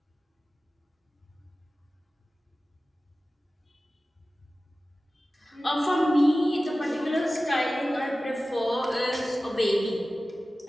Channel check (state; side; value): normal; both; correlation 0.96